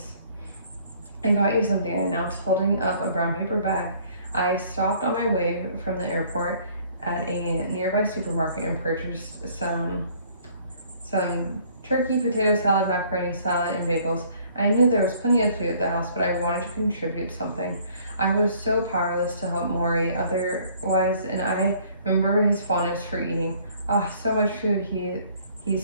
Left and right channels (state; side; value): inverted; both; correlation -0.58